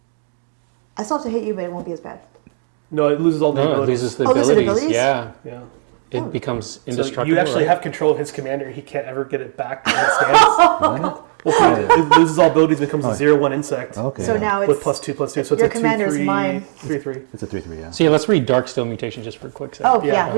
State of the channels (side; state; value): left; silent; digital silence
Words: I still have to hit you, but it won't be as bad. No, it loses all the No, it abilities. loses the Oh, loses the abilities. abilities? Yeah. Yeah. It becomes So indestructible. you actually right? have control of his commander. He can't ever get it back as it stands. Well, it loses all abilities, becomes a 0/1 insect Okay. So now it's with +2/+2. So it's your a 2/3. commander's mine. 3/3. It's a 3/3. Yeah. So yeah, let's read Darksteel Mutation just for a quick second. Oh, yeah, Yeah.